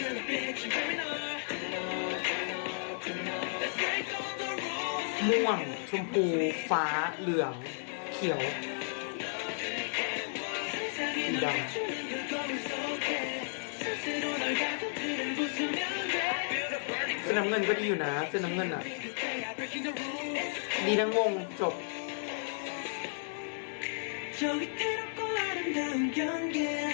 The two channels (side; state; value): right; silent; 56 dB below the other